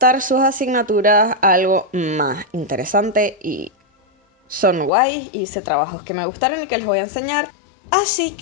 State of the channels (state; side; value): drops out; right; at 4.9 s